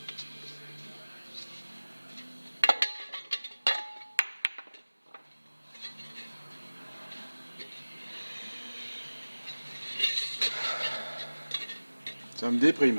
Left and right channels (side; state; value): both; inverted; correlation -1.00